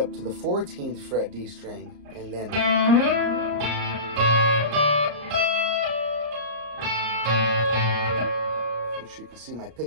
to the 14th fret D string, and then make sure you can see my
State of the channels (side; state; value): left; late; 34 ms